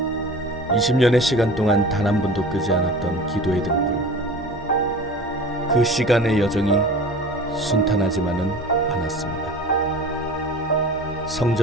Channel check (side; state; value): both; normal; correlation 0.39